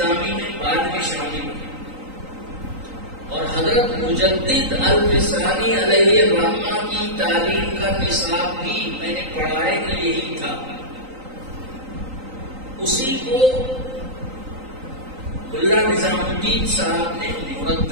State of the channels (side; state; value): left; late; 3.8 ms